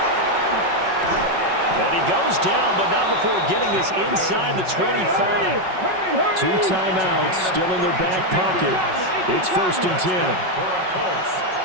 And he goes down, but not before getting this inside the 25. 2 timeouts still in their back pocket. It's 1st and 10.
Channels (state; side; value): late; left; 5.4 ms